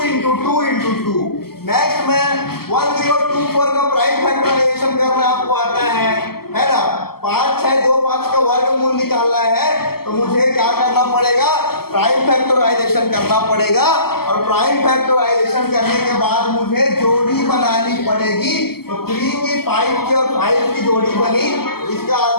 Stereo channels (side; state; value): right; late; 0.95 ms